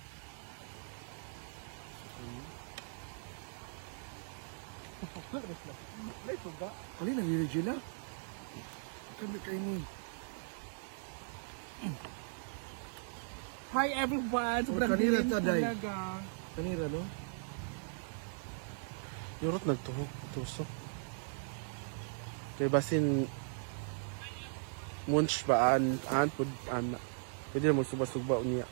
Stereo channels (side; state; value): left; silent; digital silence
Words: May tuga. Kali na ni Regina? Kami kayo ni. Hi everyone! Sobrang kanina dilim ta, Day. talaga. Kanira, no? Yurot nagtuhog, tusok. Kaya basin munch ba an pud ana. Pwede na magsuba-suba niya.